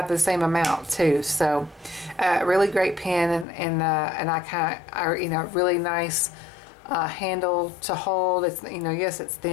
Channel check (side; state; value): right; drops out; at 3.5 s